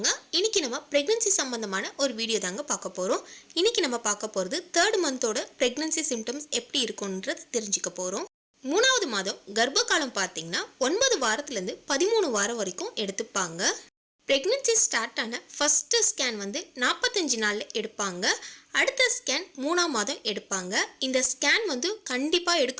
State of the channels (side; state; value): both; identical; correlation 1.00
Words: இன்னைக்கு நம்ம பிரெக்னன்சி சம்பந்தமான ஒரு வீடியோ தாங்க பார்க்க போறோம். இன்னைக்கு நம்ம பார்க்க போறது 3rd மந்தோட பிரெக்னன்சி சிம்டம்ஸ் எப்படி இருக்கும்ன்றது தெரிஞ்சுக்க போறோம். 3வது மாதம் கர்ப்ப காலம் பார்த்தீங்கன்னா 9 வாரத்துல இருந்து 13 வாரம் வரைக்கும் எடுத்துப்பாங்க. பிரெக்னன்சி ஸ்டார்ட் ஆன ஃபர்ஸ்ட் ஸ்கேன் 45 நாள்ல எடுப்பாங்க. அடுத்த ஸ்கேன் 3ஆம் மாதம் எடுப்பாங்க. இந்த ஸ்கேன் கண்டிப்பா